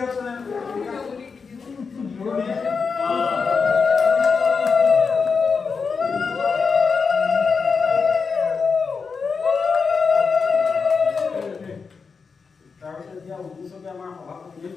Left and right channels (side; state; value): right; quieter; 5.2 dB